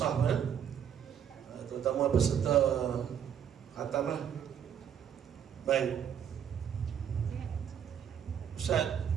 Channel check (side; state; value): left; quieter; 8.8 dB